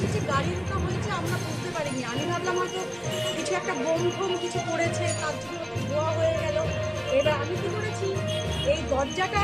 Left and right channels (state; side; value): identical; both; correlation 1.00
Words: গাড়ি ঢোকা হয়েছে, আমরা বুঝতে পারিনি। আমি ভাবলাম হয়তো কিছু একটা বোম ফোম কিছু করেছে, তার জন্য ধোয়া হয়ে গেল। এবার আমি কি করেছি, এই দরজাটা